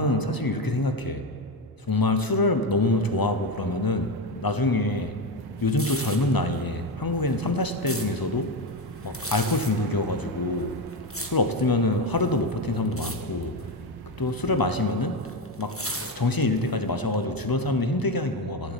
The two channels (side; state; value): both; normal; correlation 0.15